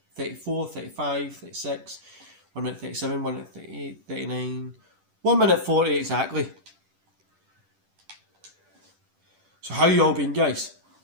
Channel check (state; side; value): late; left; 10 ms